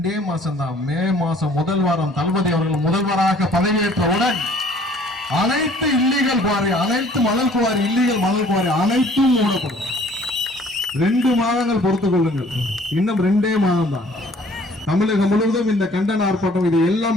மாசம் தான். மே மாசம் முதல் வாரம் தளபதி அவர்கள் முதல்வராக பதவியேற்றவுடன் அனைத்து இல்லீகல் குவாரி, அனைத்து மணல் குவாரி, இல்லீகல் மணல் குவாரி அனைத்தும் மூடப்படும். 2 மாதங்கள் பொறுத்துக் கொள்ளுங்கள். இன்னும் 2 மாதம் தான். தமிழகம் முழுவதும் இந்த கண்டன ஆர்ப்பாட்டம் இது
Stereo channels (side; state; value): both; normal; correlation 0.55